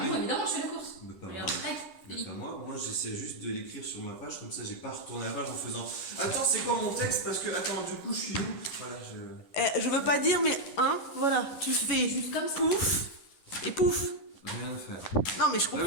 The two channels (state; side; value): late; right; 11 ms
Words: évidemment, je fais la course. Mais pas moi. Regarde, tac, Mais Philippe. pas moi. Moi, j'essaie juste de l'écrire sur ma page, comme ça, j'ai pas retourné la page en faisant. Attends, c'est quoi mon texte? Parce que, attends, du coup, je suis où? Voilà, Je veux pas dire, mais voilà, tu fais Juste comme ça. pouf et pouf. rien à faire. Non, mais je Ah, mais